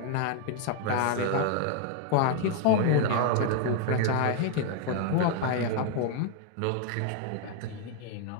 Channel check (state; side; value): different; both; correlation 0.00